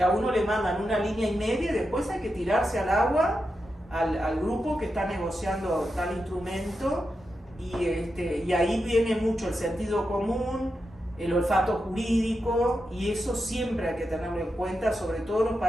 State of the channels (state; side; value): normal; both; correlation 0.88